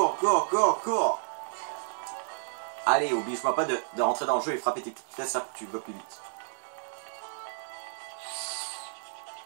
cours, cours, cours. Allez, oblige-moi pas de rentrer dans le jeu et frapper tes petites fesses là pour que tu vas plus vite.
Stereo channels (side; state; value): left; silent; digital silence